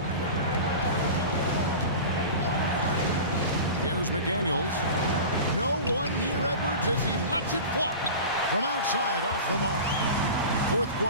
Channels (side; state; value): both; inverted; correlation -0.33